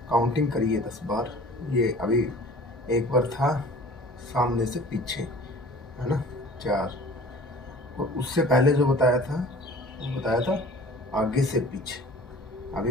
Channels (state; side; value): normal; both; correlation 0.46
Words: काउंटिंग करिए 10 बार। ये अभी एक बार था सामने से पीछे, है ना, 4। और उससे पहले जो बताया था वो बताया था आगे से पीछे।